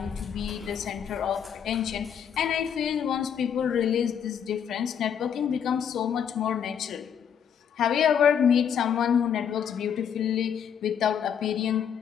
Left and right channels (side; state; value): right; quieter; 8.1 dB